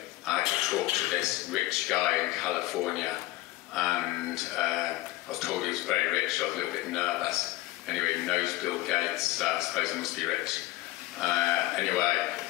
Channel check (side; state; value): right; quieter; 17.6 dB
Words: I had to talk to this rich guy in California, and I was told he was very rich. I was a little bit nervous. Anyway, he knows Bill Gates, so I suppose he must be rich. Anyway,